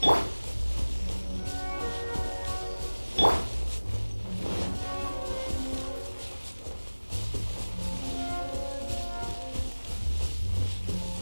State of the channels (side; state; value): both; inverted; correlation -1.00